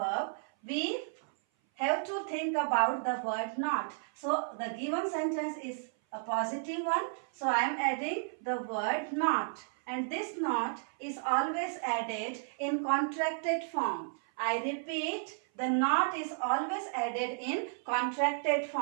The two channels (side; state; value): left; silent; 56 dB below the other